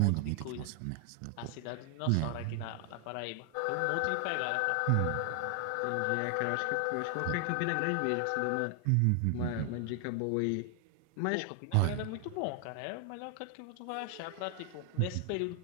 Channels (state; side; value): different; both; correlation 0.00